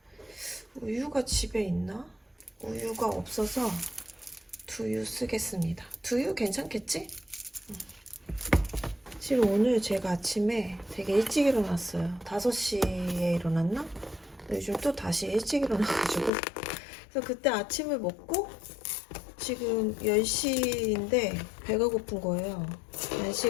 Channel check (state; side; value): drops out; right; at 16.3 s